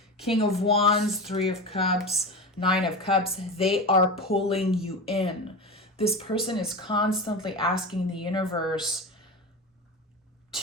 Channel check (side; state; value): both; normal; correlation 0.25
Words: King of Wands, Three of Cups, Nine of Cups. They are pulling you in. This person is constantly asking the universe